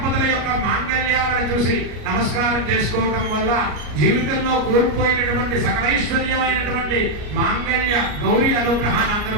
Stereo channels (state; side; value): late; left; 34 ms